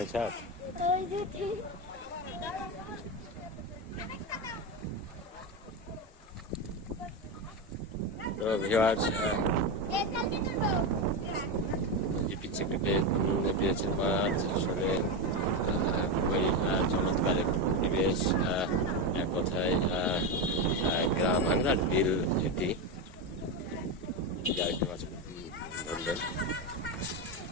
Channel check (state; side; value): normal; both; correlation 0.13